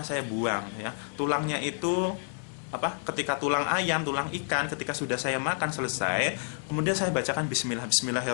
saya buang ya. Tulangnya itu ketika tulang ayam, tulang ikan, ketika sudah saya makan selesai, kemudian saya bacakan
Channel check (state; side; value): silent; right; digital silence